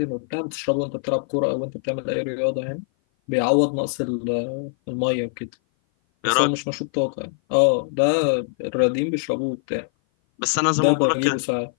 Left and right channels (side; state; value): right; silent; 57 dB below the other